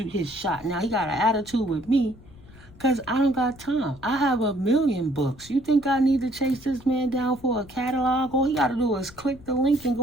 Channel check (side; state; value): left; noise; rumble, 22 dB below the sound